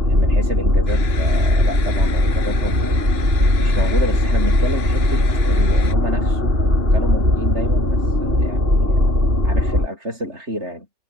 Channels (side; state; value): left; late; 2.9 ms